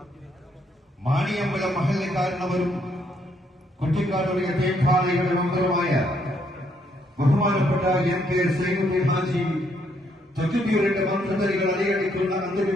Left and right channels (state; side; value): normal; both; correlation 0.72